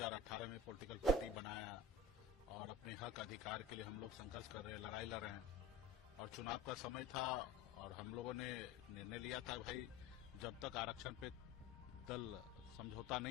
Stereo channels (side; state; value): right; quieter; 4.2 dB